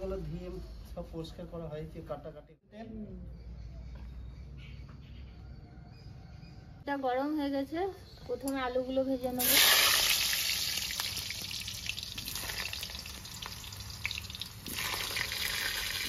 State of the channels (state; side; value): identical; both; correlation 1.00